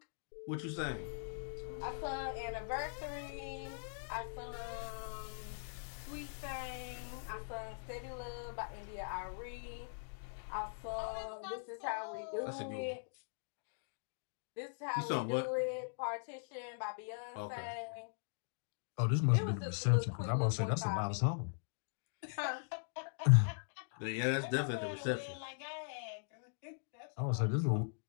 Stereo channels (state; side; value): silent; right; digital silence